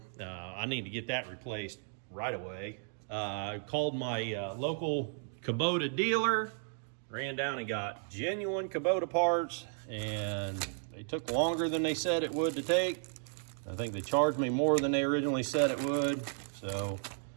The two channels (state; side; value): silent; left; 55 dB below the other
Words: I need to get that replaced right away. I called my local Kubota dealer. Ran down and got genuine Kubota parts, and they took longer than they said it would to take. I think they charged me more than they originally said it would. So